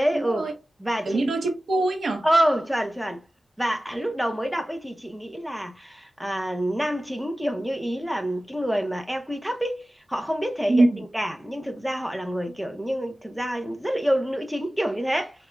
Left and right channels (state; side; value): normal; both; correlation 0.96